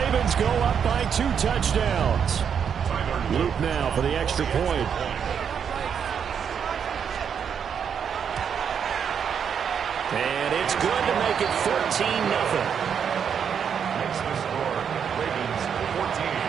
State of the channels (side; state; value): left; quieter; 7.5 dB